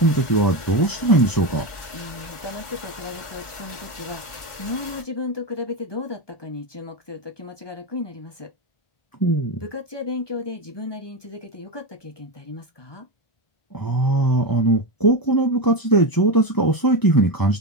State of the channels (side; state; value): right; late; 1.4 ms